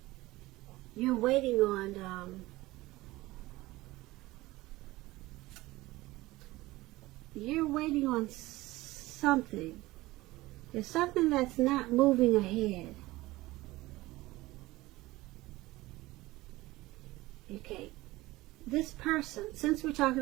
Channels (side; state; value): left; quieter; 19.0 dB